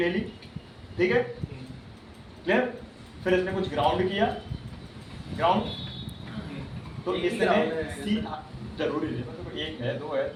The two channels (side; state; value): both; identical; correlation 1.00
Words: ली ठीक है क्लियर फिर इसने कुछ ग्राउंड किया ग्राउंड तो एक ही इसने ground है। सी जरूरी नहीं मतलब एक है दो है